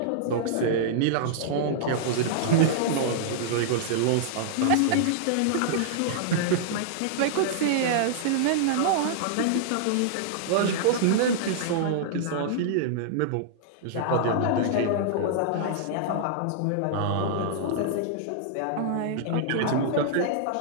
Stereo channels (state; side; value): different; both; correlation -0.01